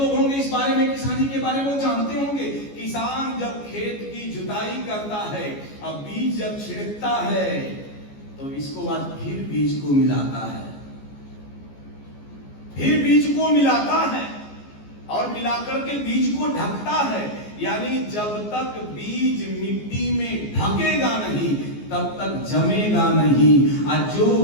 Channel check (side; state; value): right; late; 14 ms